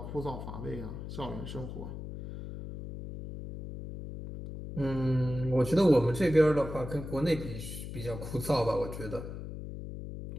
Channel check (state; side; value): noise; left; hum, 9 dB below the sound